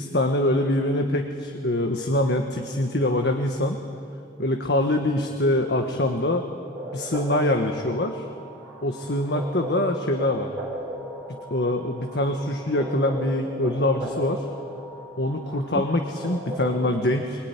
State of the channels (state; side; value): normal; both; correlation 0.33